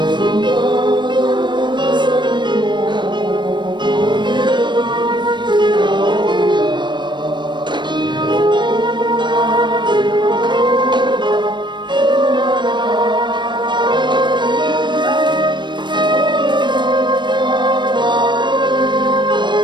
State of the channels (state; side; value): late; left; 0.22 ms